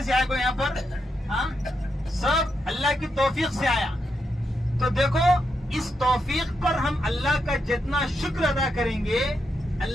سے آیا کوئی یہاں پر؟ ہاں، سب اللہ کی توفیق سے آیا۔ تو دیکھو، اس توفیق پر ہم اللہ کا جتنا شکر ادا کریں گے،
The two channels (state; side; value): normal; both; correlation 0.83